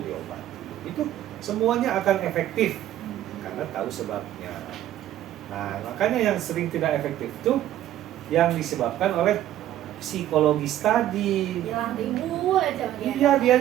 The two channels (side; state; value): left; quieter; 12.6 dB